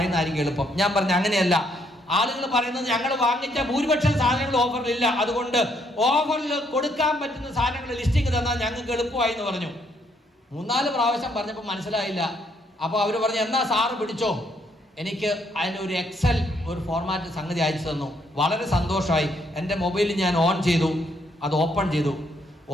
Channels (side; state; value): both; normal; correlation 0.71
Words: എളുപ്പം. ഞാൻ പറഞ്ഞു അങ്ങനെയല്ല, ആളുകൾ പറയുന്നത് ഞങ്ങൾ വാങ്ങിച്ച ഭൂരിപക്ഷം സാധനങ്ങൾ ഓഫറിലില്ല, അതുകൊണ്ട് ഓഫറിൽ കൊടുക്കാൻ പറ്റുന്ന സാധനങ്ങളുടെ ലിസ്റ്റിംഗ് തന്നാൽ ഞങ്ങൾക്ക് എളുപ്പമായി എന്ന് പറഞ്ഞു. 3-4 പ്രാവശ്യം പറഞ്ഞപ്പോൾ മനസ്സിലായില്ല. അപ്പോൾ അവർ പറഞ്ഞു എന്നാ സാറ് പിടിച്ചോ. എനിക്ക് അതിന് ഒരു എക്സൽ ഒരു ഫോർമാറ്റ് സംഗതി അയച്ചു തന്നു. വളരെ സന്തോഷമായി. എൻ്റെ മൊബൈലിൽ ഞാൻ ഓൺ ചെയ്തു, അത് ഓപ്പൺ ചെയ്തു.